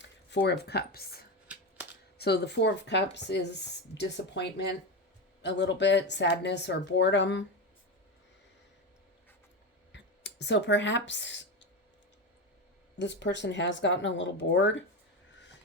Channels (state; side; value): normal; both; correlation 0.17